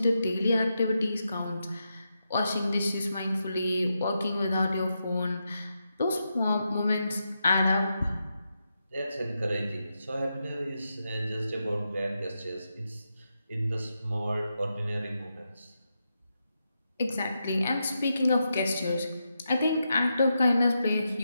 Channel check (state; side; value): inverted; both; correlation -0.86